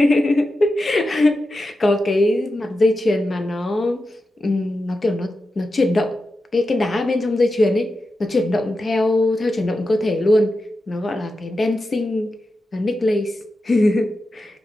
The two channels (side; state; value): both; normal; correlation 0.90